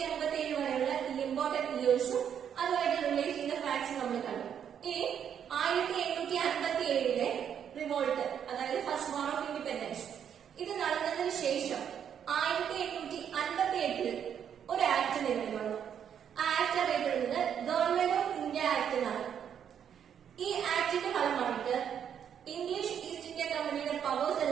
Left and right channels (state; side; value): quieter; left; 8.6 dB